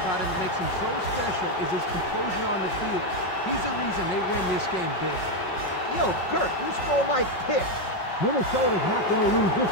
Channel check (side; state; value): right; late; 5.4 ms